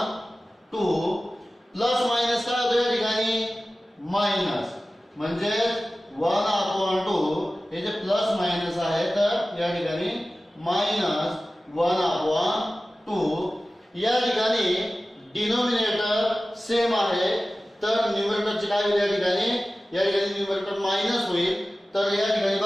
Plus minus काय होतं या ठिकाणी मायनस, म्हणजे 1/2 हे जे प्लस मायनस आहे, तर या ठिकाणी -1/2. या ठिकाणी डिनोमिनेटर सेम आहे, तर न्यूमरेटरचे काय होईल या ठिकाणी न्यूमरेटर मायनस होईल. तर या ठिकाणी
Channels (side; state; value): both; normal; correlation 0.96